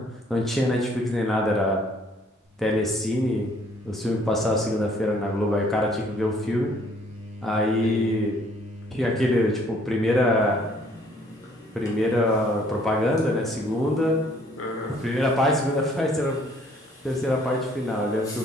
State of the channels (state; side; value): normal; both; correlation 0.61